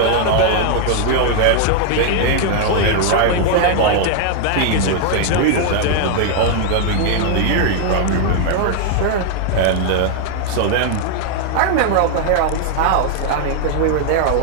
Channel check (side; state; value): both; different; correlation 0.00